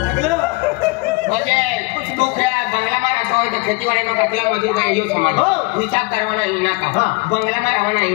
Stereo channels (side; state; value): right; quieter; 26.5 dB